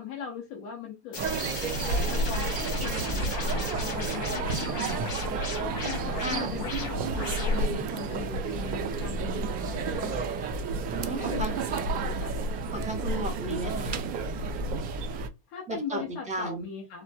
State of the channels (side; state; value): right; late; 4.3 ms